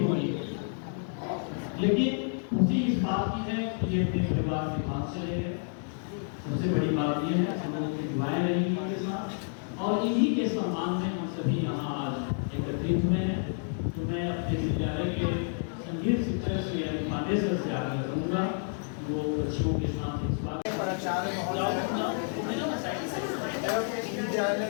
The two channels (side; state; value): right; silent; 58 dB below the other